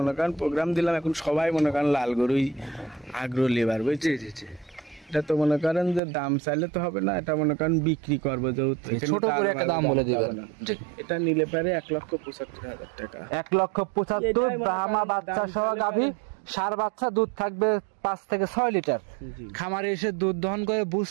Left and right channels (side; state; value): left; drops out; at 6.0 s